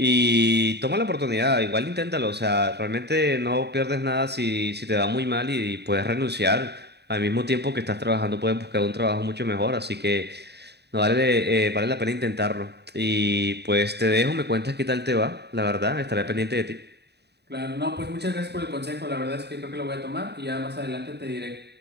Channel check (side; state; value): left; late; 0.48 ms